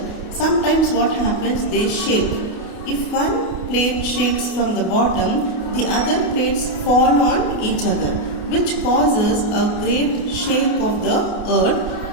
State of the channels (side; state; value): right; late; 28 ms